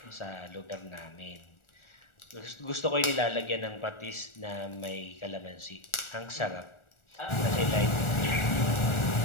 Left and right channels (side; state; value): right; late; 1.4 ms